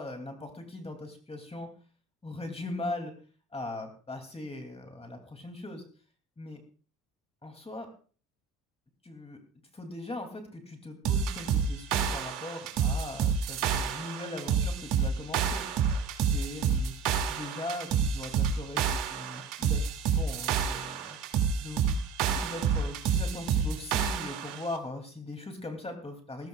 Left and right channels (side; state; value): left; quieter; 5.0 dB